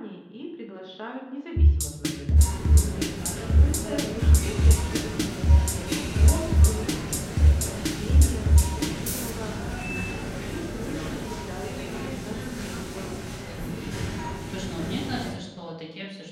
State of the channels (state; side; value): identical; both; correlation 1.00